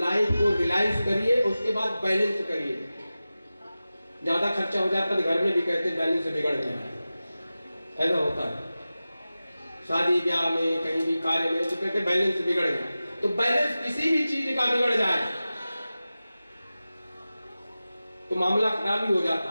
को रियलाइज करिए, उसके बाद बैलेंस करिए। ज्यादा खर्चा हो जाता है तो घर में भी कहते हैं बैलेंस बिगड़ गया, ऐसा होता है। शादी ब्याह में, कहीं भी कार्य में, तो कहते हैं बैलेंस बिगड़ गया। तो बैलेंस किसी भी चीज का बिगड़ जाए तो मामला खराब ही हो जाता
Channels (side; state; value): both; inverted; correlation -0.95